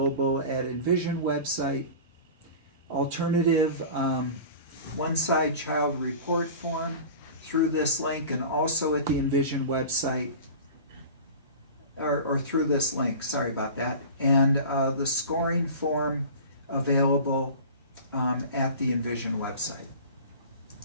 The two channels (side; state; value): both; inverted; correlation -0.36